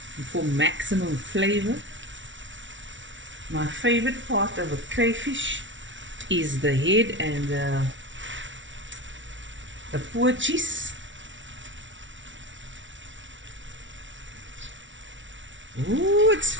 For maximum flavor. My favorite part of a crayfish is the head and the poor cheese. Ooh, it's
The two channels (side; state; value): left; late; 0.55 ms